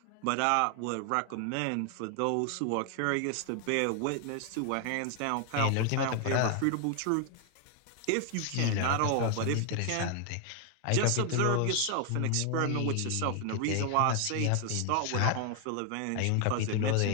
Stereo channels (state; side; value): different; both; correlation 0.00